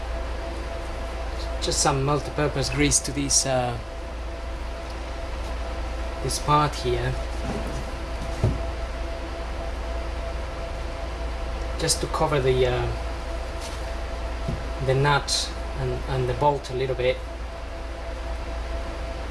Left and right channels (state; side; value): identical; both; correlation 1.00